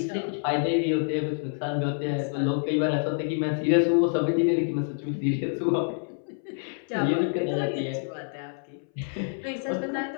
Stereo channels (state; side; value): silent; right; 60 dB below the other